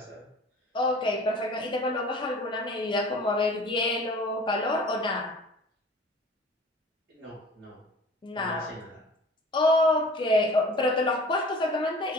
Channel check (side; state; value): both; normal; correlation 0.45